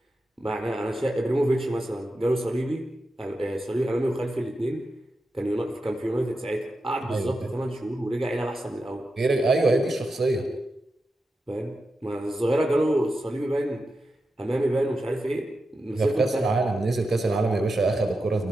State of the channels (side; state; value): both; normal; correlation 0.89